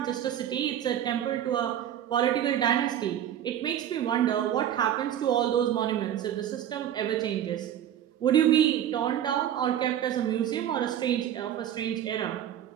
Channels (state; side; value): quieter; left; 10.6 dB